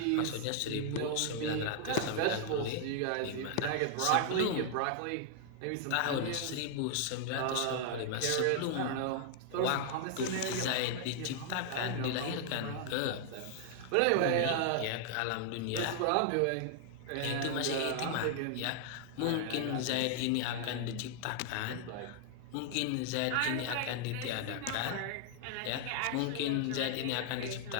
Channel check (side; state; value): both; different; correlation 0.00